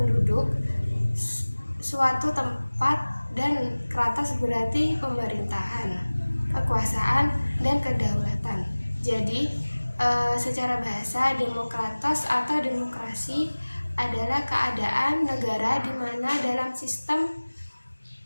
suatu tempat, dan kratos berarti pemerintahan, kekuasaan, dan kedaulatan. Jadi secara bahasa, demokratos atau demokrasi adalah keadaan negara di mana dalam sistem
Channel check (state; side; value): inverted; both; correlation -1.00